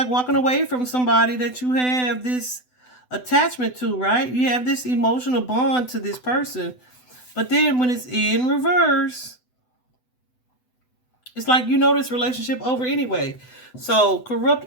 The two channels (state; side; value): late; right; 8.0 ms